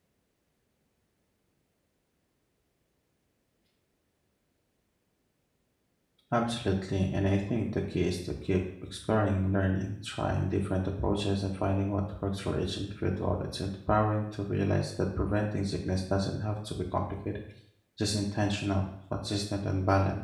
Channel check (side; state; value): both; identical; correlation 1.00